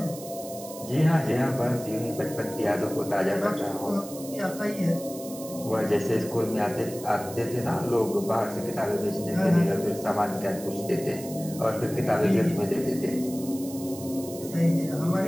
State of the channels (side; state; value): right; noise; hiss, 14 dB below the sound